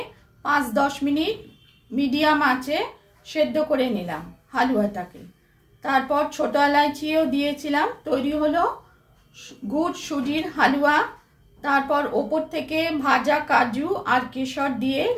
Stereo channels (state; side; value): identical; both; correlation 1.00